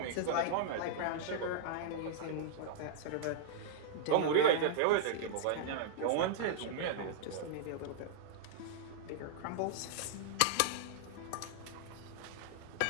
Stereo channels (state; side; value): different; both; correlation -0.01